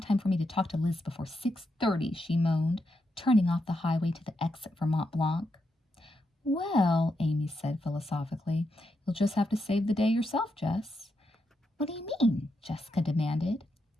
for me to talk to Liz before 6:30, she moaned, turning off the highway to the exit for Mont Blanc. "Well," Amy said philosophically, "you'll just have to save the day yourself, Jess." "What do you mean?" Jessica demanded.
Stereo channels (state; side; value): normal; both; correlation 0.83